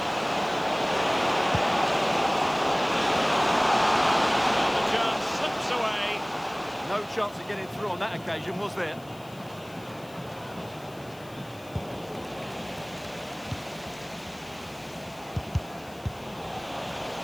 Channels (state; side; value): noise; left; hiss, 24 dB below the sound